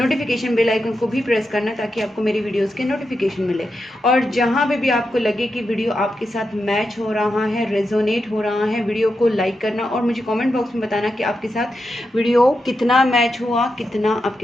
bell icon को भी प्रेस करना ताकि आपको मेरी वीडियोस के नोटिफिकेशन मिले। और जहाँ पे भी आपको लगे कि वीडियो आपके साथ मैच हो रहा है, रेजोनेट हो रहा है, वीडियो को लाइक करना और मुझे कमेंट बॉक्स में बताना कि आपके साथ वीडियो कितना मैच हुआ, कितना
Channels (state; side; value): normal; both; correlation 0.87